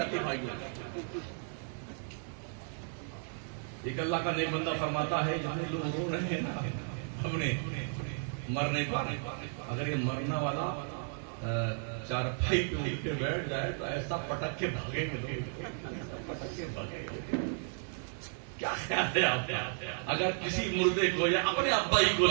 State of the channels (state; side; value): silent; left; 55 dB below the other